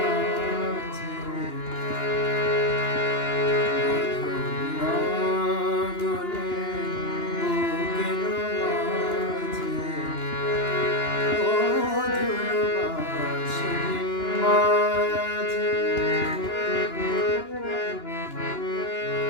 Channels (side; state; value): right; late; 2.9 ms